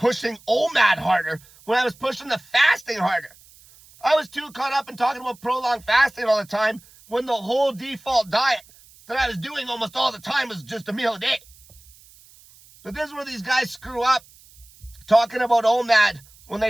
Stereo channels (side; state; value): right; noise; hiss, 25 dB below the sound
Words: OMAD harder when I was pushing the fasting harder. I was too caught up in talking about prolonged fasting all the time when the whole default diet that I was doing almost all the time was just a meal a day. But this is where these guys screw up, talking about OMAD when